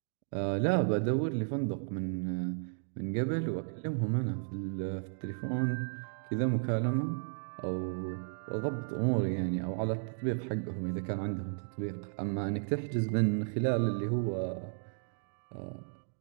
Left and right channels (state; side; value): silent; left; digital silence